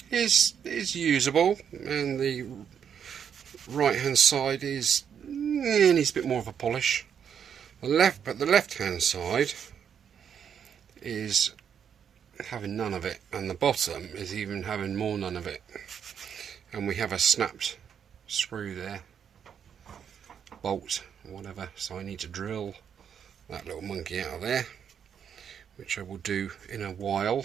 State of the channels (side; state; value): left; quieter; 8.0 dB